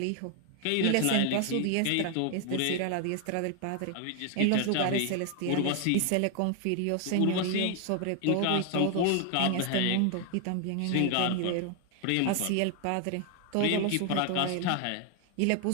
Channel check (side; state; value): both; different; correlation 0.00